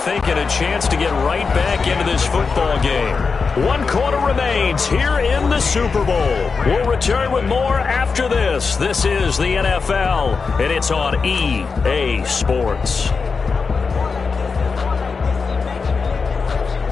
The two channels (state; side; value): quieter; right; 4.9 dB